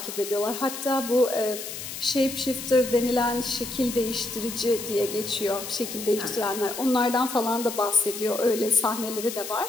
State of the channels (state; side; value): noise; left; hiss, 8 dB below the sound